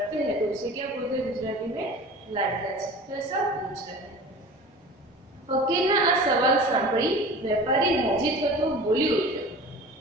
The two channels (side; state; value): both; normal; correlation 0.39